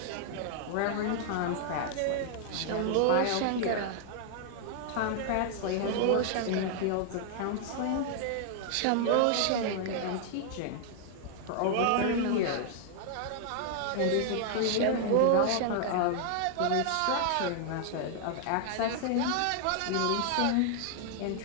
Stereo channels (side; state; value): both; different; correlation -0.01